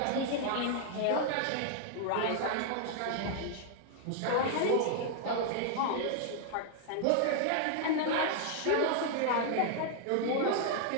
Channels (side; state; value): both; different; correlation -0.01